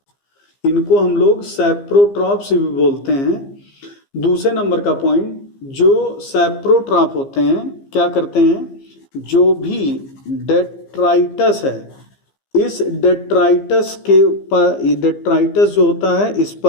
इनको हम लोग सैप्रोट्रॉप्स भी बोलते हैं। दूसरे नंबर का पॉइंट, जो सैप्रोट्रॉप होते हैं क्या करते हैं? जो भी डेट्राइटस है, इस डेट्राइटस के ऊपर, डेट्राइटस जो होता है इस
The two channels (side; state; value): right; late; 15 ms